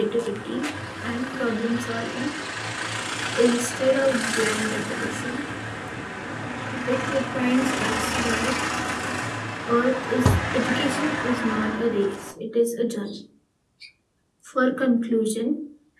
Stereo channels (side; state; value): both; identical; correlation 1.00